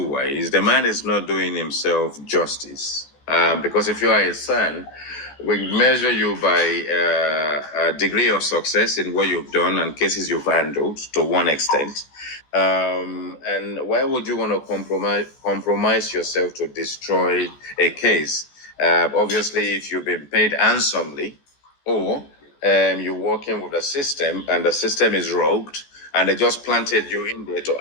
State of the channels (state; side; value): late; right; 14 ms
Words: ways. The man is not doing himself justice, because if you are his son, we measure you by a degree of success in what you've done and cases you've handled to one extent. And why would you want to compromise yourself to destroy a case? Obviously, if you've been paid handsomely, or you're working with a system and the system is rogued and they just planted you in there to